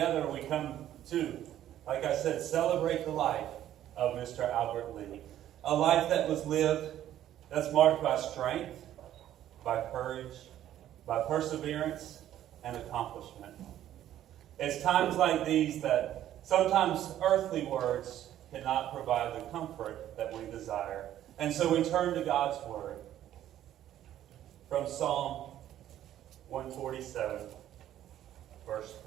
we come to, like I said, celebrate the life of Mr. Albert Lee. A life that was lived that's marked by strength, by courage, by perseverance, and accomplishment. It's times like these that sometimes earthly words cannot provide the comfort that we desire. And so we turn to God's Word. From Psalm 147, verse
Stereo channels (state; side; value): quieter; left; 12.0 dB